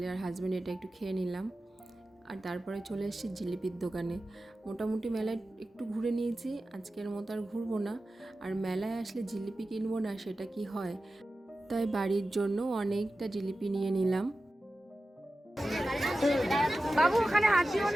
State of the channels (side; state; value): both; normal; correlation 0.94